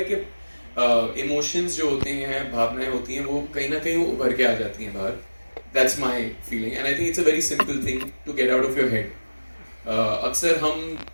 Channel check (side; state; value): both; inverted; correlation -1.00